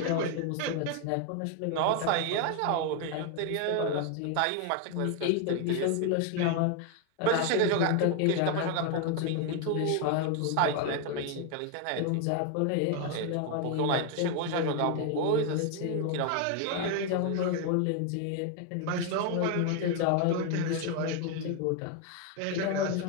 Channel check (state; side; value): different; both; correlation 0.01